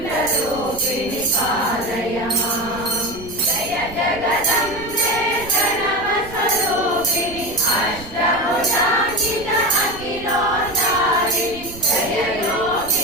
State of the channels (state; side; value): noise; right; rumble, 16 dB below the sound